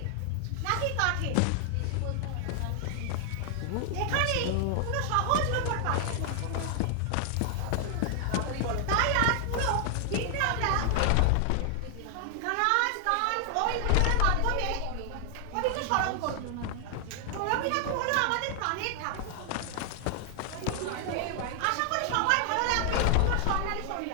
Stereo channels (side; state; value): both; different; correlation 0.00